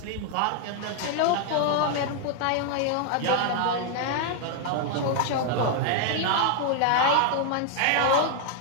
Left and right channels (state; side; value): different; both; correlation 0.00